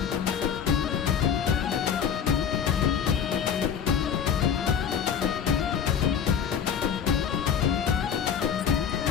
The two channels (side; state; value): right; quieter; 7.8 dB